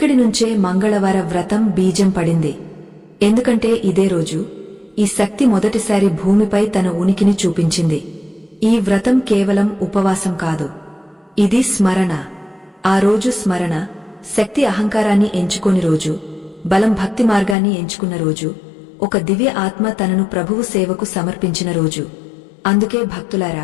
నుంచే మంగళవార వ్రతం బీజం పడింది. ఎందుకంటే ఇదే రోజు ఈ శక్తి మొదటిసారి భూమిపై తన ఉనికిని చూపించింది. ఈ వ్రతం కేవలం ఉపవాసం కాదు, ఇది స్మరణ. ఆ రోజు స్మరణ శక్తి అహంకారాన్ని ఎంచుకోని రోజు, బలం భక్తి మార్గాన్ని ఎంచుకున్న రోజు, ఒక దివ్య ఆత్మ తనను ప్రభువు సేవకు సమర్పించిన రోజు. అందుకే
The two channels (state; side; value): drops out; right; at 17.6 s